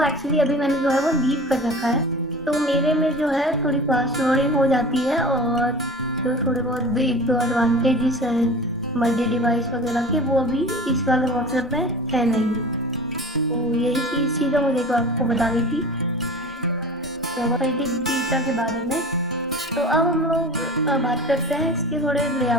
एक्चुअली अभी मैंने जो है वो लीव कर रखा है। तो मेरे में जो है थोड़ी फास्ट लोडिंग हो जाती है और जो थोड़े बहुत एक दो एडवांटेजेस हैं मल्टी डिवाइस वगैरह के वो अभी इस वाले व्हाट्सएप में है नहीं। तो यही चीज़ मुझे को आपको बतानी थी मल्टी बीटा के बारे में। तो अब हम लोग बात करते हैं इसके थोड़े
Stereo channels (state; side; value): normal; both; correlation 0.37